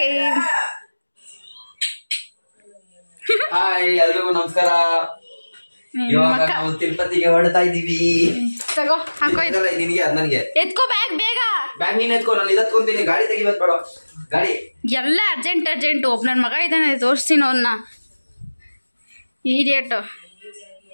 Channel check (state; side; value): inverted; both; correlation -1.00